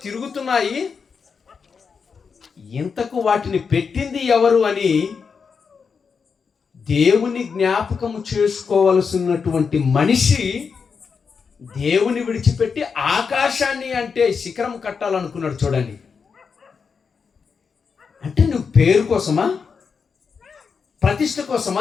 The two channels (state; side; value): quieter; right; 5.7 dB